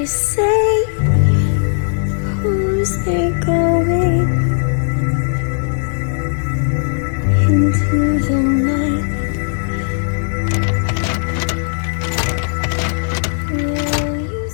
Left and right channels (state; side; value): silent; right; digital silence